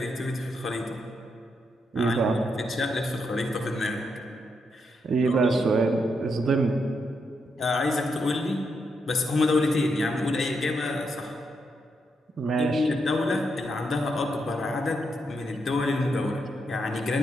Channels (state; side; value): normal; both; correlation 0.81